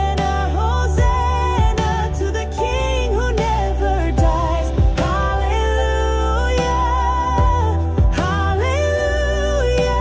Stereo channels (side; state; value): both; identical; correlation 1.00